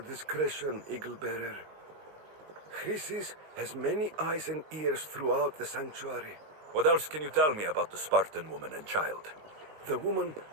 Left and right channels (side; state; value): left; late; 19 ms